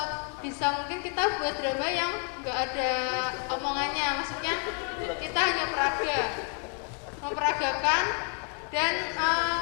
bisa mungkin kita buat drama yang nggak ada omongannya, maksudnya kita hanya memperagakan dan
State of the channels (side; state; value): right; quieter; 39.7 dB